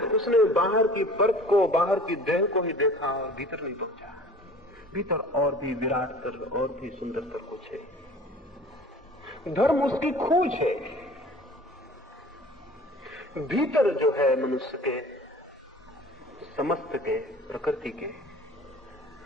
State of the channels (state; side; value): normal; both; correlation 0.45